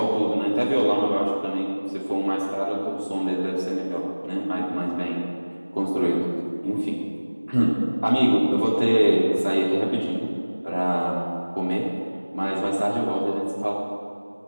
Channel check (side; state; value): both; inverted; correlation -1.00